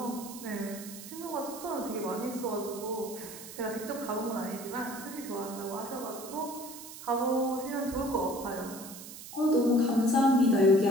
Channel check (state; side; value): noise; right; hiss, 13 dB below the sound